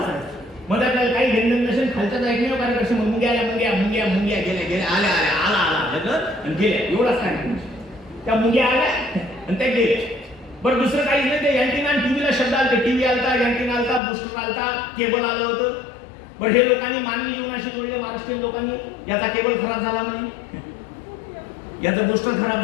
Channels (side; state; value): right; drops out; at 14.0 s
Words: मध्ये आपल्याला काही घेणं नसेल, खालच्याच ऐकण्यावर कार्यक्रम मुंग्या मुंग्या मुंग्या मुंग्या गेल्या गेल्या, आल्या आल्या, आला आला आणि गेल्या, एवढाच काय. त्या मुंग्या आल्या आणि त्या गेल्या. बरं, दुसरं काहीच नाही. ते अँटिना आणि टीव्हीला शब्द आलते. टीव्ही आलता, अँटिना आलता, बुस्टर आलता, केबल आलं होतं. बरं, हे लोकांनी मानवी जीवनाशी जोडले, महाराष्ट्रीयन लोकांनी. याचा केबल खराब झाला म्हणे, याचं बुस्टर खराब